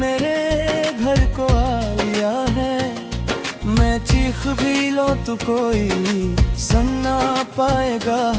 घर को आ लिया है। मैं चीख भी लो तो कोई सुन ना पाएगा,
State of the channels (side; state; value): both; identical; correlation 1.00